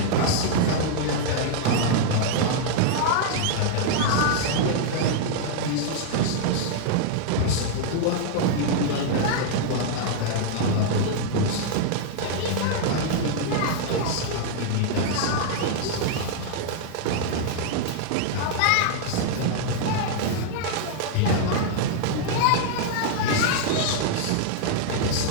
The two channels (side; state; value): both; different; correlation 0.00